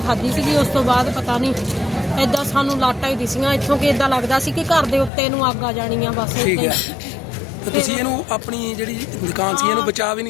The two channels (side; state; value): right; drops out; at 5.1 s